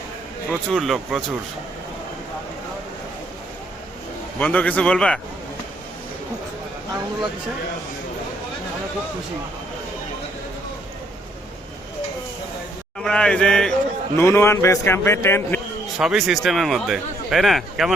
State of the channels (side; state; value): both; normal; correlation 0.69